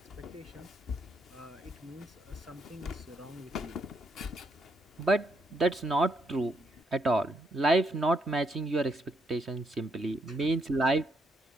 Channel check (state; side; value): normal; both; correlation 0.75